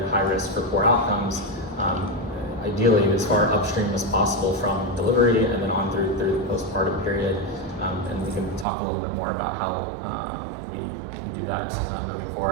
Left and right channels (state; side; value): drops out; left; at 8.7 s